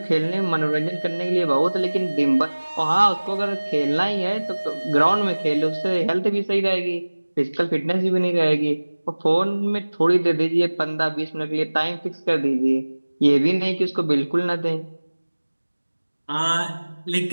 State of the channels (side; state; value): both; inverted; correlation -1.00